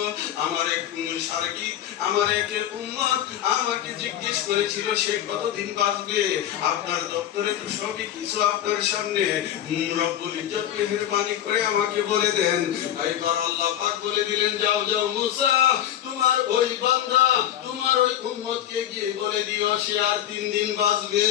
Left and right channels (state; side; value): quieter; right; 11.4 dB